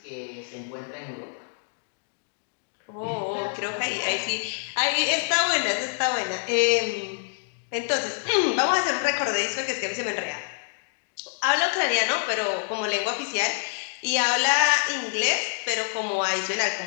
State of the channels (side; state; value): right; silent; digital silence